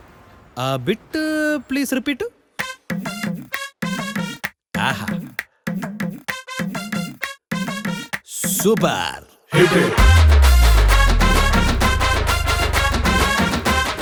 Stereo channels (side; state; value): both; identical; correlation 1.00